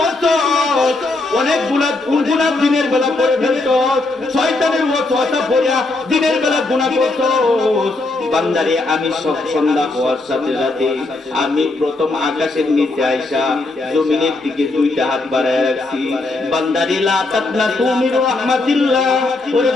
অনেক গুনাহ, কোন গুনাহ দিনের বেলা করে ফেলছস, শয়তানের ওয়াসওয়াসা পড়িয়া দিনের বেলা গুনাহ করছস। বান্দারে, আমি সব সন্ধ্যা হওয়ার সাথে সাথে আমি প্রথম আকাশের নিচে আইসা জমিনের দিকে 2টা হাত বাড়ায় রাখছি। বান্দারে, লা তাকনাতু মির রাহমাতিল্লাহ। ওরে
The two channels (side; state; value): right; quieter; 3.1 dB